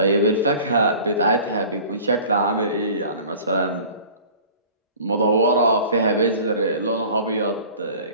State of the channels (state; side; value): inverted; both; correlation -0.44